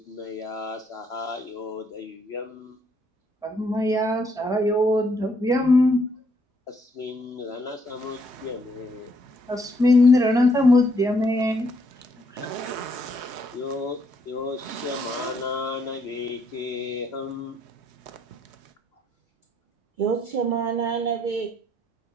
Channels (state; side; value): normal; both; correlation 0.72